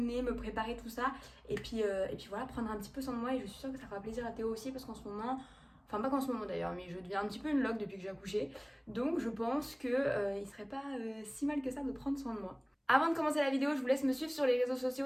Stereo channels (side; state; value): both; identical; correlation 1.00